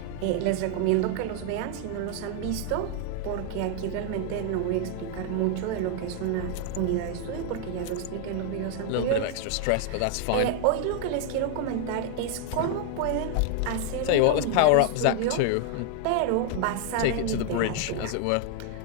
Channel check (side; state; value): both; different; correlation 0.00